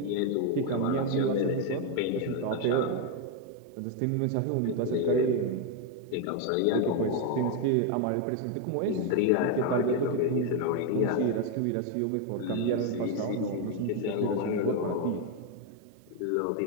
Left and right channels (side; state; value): both; different; correlation 0.01